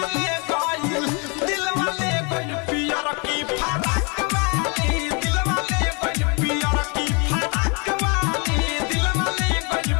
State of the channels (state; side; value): quieter; right; 32.3 dB